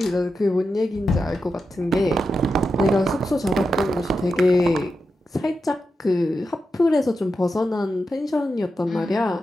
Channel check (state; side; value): normal; both; correlation 0.88